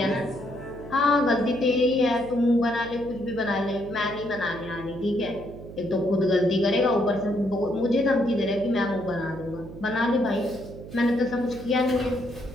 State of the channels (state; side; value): noise; right; hum, 14 dB below the sound